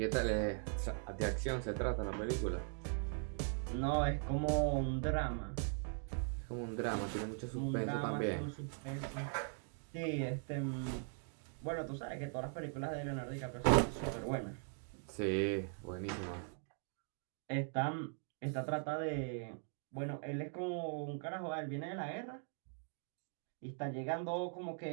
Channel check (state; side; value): silent; left; 51 dB below the other